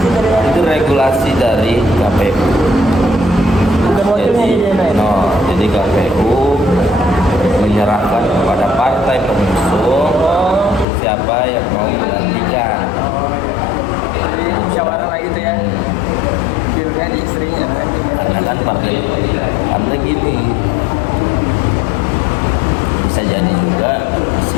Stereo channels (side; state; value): right; drops out; at 10.9 s